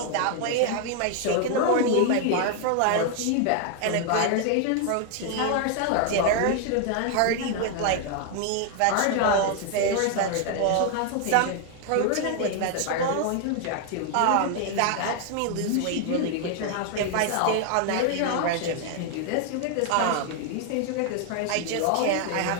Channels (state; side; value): different; both; correlation 0.00